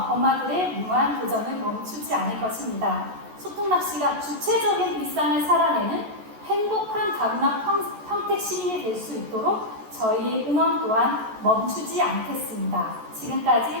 엄마들의 무한 도전을 멈추지 않을 것입니다. 소통낚시가 주체적인 일상을 살아내는 행복한 다문화 평택 시민이 될 수 있도록 저희의 응원 또한 멈추지 않겠습니다.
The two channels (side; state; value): left; late; 14 ms